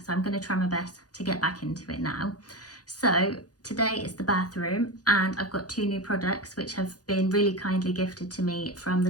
so I'm going to try my best to get back into it now. So today is the bathroom, and I've got two new products which have been really kindly gifted to me from the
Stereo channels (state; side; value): late; right; 0.68 ms